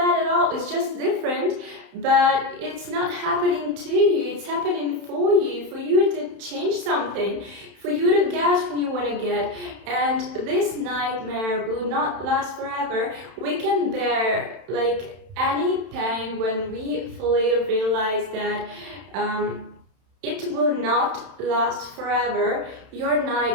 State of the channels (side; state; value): left; late; 31 ms